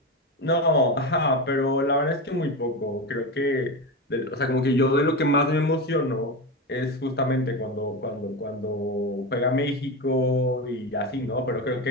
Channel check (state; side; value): normal; both; correlation 0.19